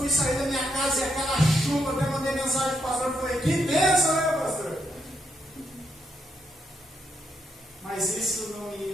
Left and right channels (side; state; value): both; normal; correlation 0.78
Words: sair da minha casa e aquela chuva, até mandei mensagem para o pastor, eu falei, que bênção, né, pastor? Mas isso não